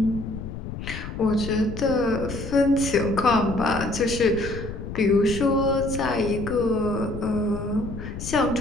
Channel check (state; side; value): noise; left; rumble, 8 dB below the sound